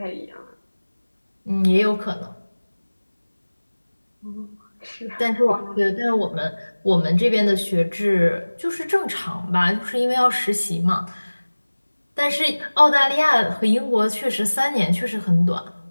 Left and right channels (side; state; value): both; inverted; correlation -1.00